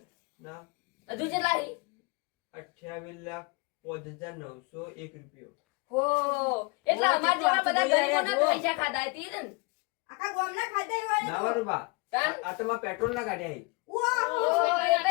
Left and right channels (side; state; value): right; quieter; 27.5 dB